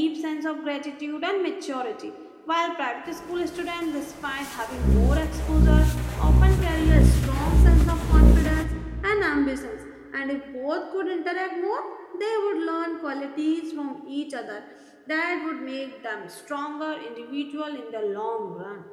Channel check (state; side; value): identical; both; correlation 1.00